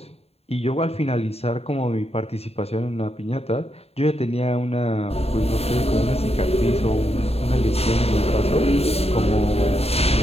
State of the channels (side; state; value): right; late; 0.29 ms